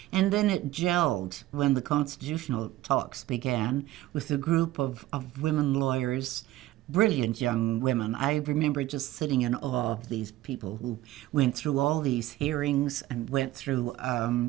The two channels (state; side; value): quieter; left; 15.8 dB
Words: And then it gelled when the constitutional talks began with a group of women lawyers, brilliant young women. I remember just sitting in awe of these people who went through all these hearings and went through